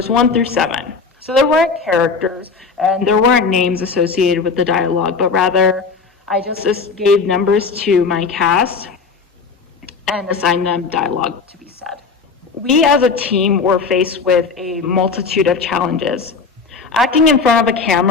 1 through 7. So there weren't characters, and there weren't names associated with the dialogue, but rather I just gave numbers to my cast and assigned them dialogue to be said. We as a team were faced with a multitude of challenges. Acting in front of a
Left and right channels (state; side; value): quieter; right; 4.9 dB